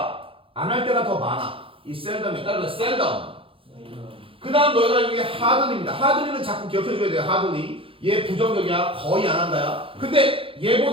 안 할 때가 더 많아. 이 셀덤에 따라서 셀덤. 그 다음 너희가 여기 하드리입니다. 하드리는 자꾸 기억해줘야 돼요. 하드리. 얘 부정적이야. 거의 안 한다야. 근데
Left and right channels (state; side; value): late; left; 0.26 ms